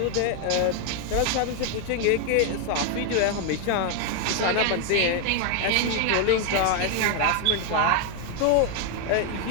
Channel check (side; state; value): both; different; correlation 0.01